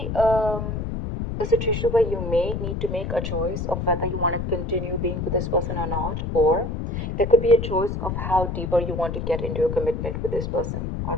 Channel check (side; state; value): left; noise; rumble, 3 dB below the sound